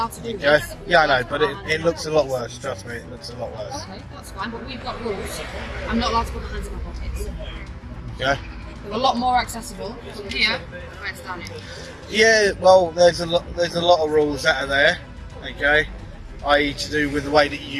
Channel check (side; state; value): both; identical; correlation 1.00